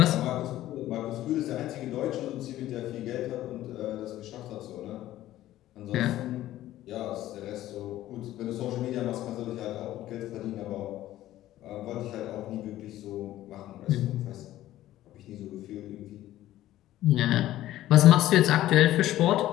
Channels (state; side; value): quieter; right; 14.3 dB